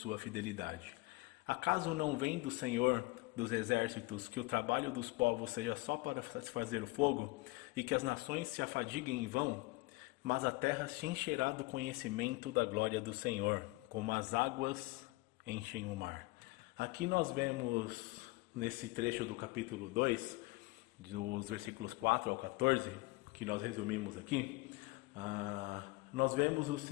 fidelidade. Acaso não vem do Senhor dos exércitos que o trabalho dos povos seja só para satisfazer o fogo, e que as nações se afadiguem em vão? Mas a terra se encherá do conhecimento da glória do Senhor, como as águas enchem o mar. Aqui nós vemos, nesse trecho do capítulo 2, dos versículos 4 ao 14, que nós resumimos aqui, nós vemos o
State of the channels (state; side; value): quieter; right; 23.0 dB